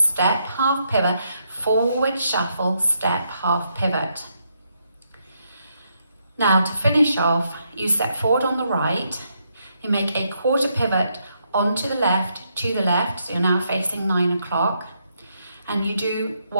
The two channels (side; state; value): both; inverted; correlation -0.77